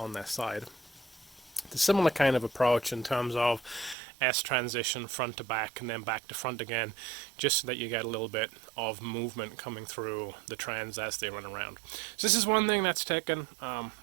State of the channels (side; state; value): left; drops out; at 4.0 s